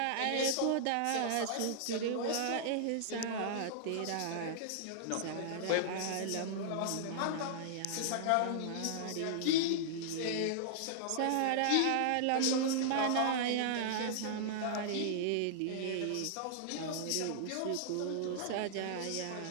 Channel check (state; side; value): different; both; correlation -0.01